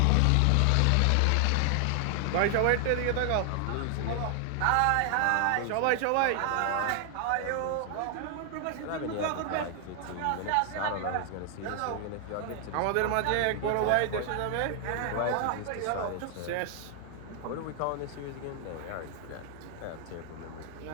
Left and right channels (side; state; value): both; different; correlation 0.00